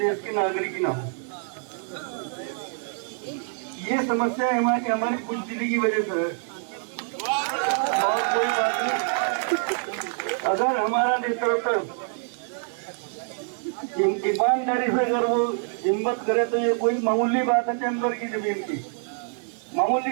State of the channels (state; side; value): silent; left; 58 dB below the other